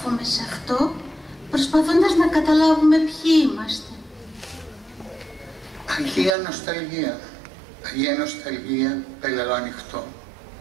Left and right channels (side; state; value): left; drops out; at 6.4 s